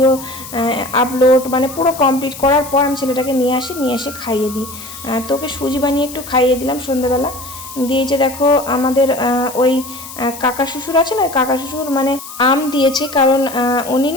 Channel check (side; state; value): left; noise; hiss, 13 dB below the sound